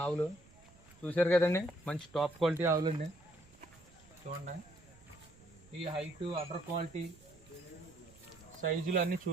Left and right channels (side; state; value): right; noise; rumble, 25 dB below the sound